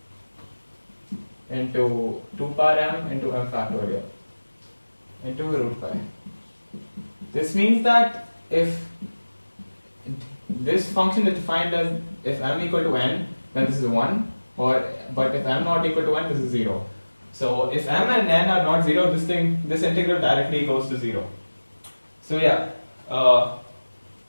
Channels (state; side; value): inverted; both; correlation -1.00